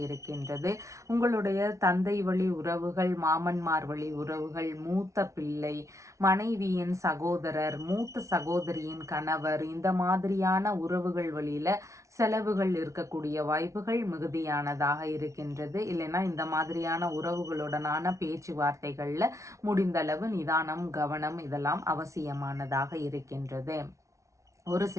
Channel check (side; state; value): left; late; 0.15 ms